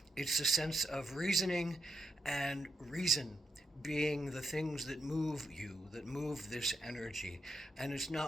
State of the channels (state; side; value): normal; both; correlation 0.81